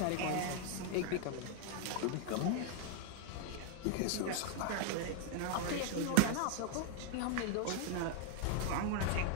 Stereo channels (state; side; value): different; both; correlation 0.00